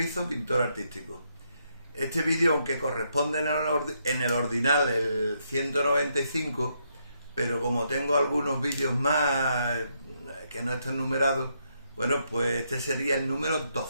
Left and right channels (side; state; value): both; inverted; correlation -0.77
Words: pintor artístico. Este vídeo, aunque corresponde en el ordinal el 195, pero como tengo algunos vídeos más que no están numerados, bueno, pues este sería el número